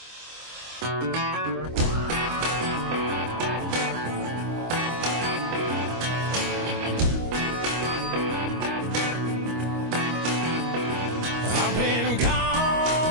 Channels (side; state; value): left; late; 25 ms